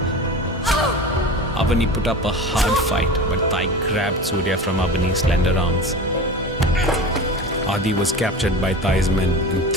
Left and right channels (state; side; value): normal; both; correlation 0.32